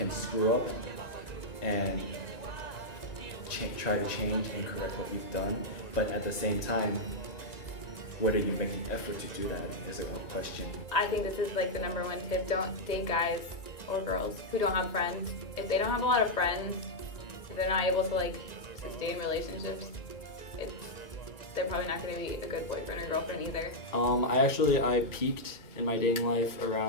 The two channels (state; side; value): late; right; 1.9 ms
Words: screw up and try to change and correct what you've done, but at the same time, whether you make the effort to do that is a question. I think this is like the #1 tip. Don't date guys or girls who don't have friends. If they don't have a lot of friends, if they're not able to like sustain relationships, they're probably not going to be a good boyfriend or girlfriend either. I peaked in my dating life